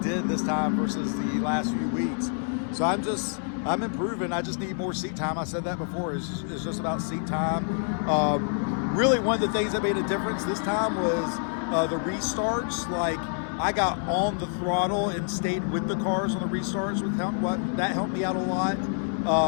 this time versus the last few weeks. So I'm improving. I just need more seat time. I said that before. It's just about seat time. Really, one of the things that made a difference this time was the restarts. Like I got on the throttle and stayed with the cars on the restarts. That helped me out a lot.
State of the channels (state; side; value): silent; right; 57 dB below the other